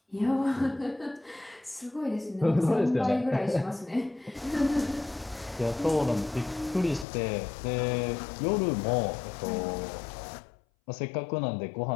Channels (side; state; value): right; drops out; at 7.1 s